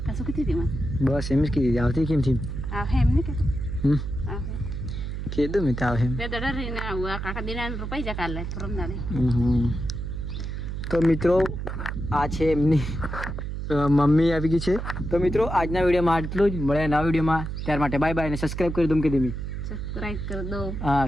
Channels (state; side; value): noise; right; hum, 5 dB below the sound